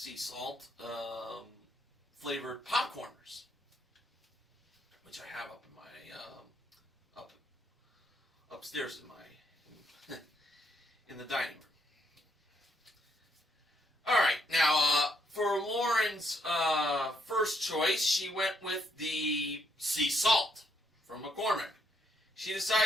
salt flavored popcorners, which I have up in my upstairs in my in the dining room. All right, now for Lauren's first choice, she went with the sea salt from McCormick. She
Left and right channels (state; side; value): normal; both; correlation 0.74